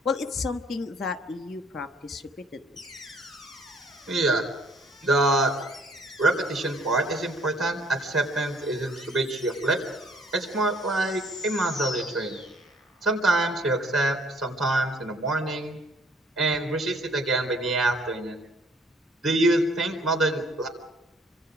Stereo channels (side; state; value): both; normal; correlation 0.60